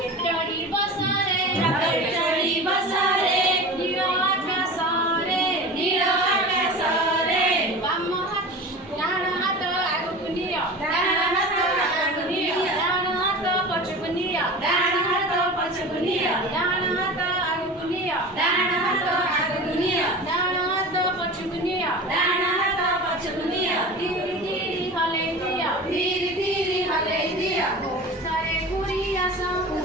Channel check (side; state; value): both; normal; correlation 0.33